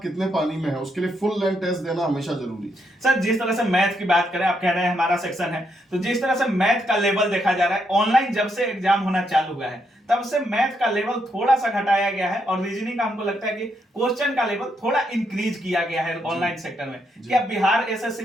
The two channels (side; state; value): both; normal; correlation 0.78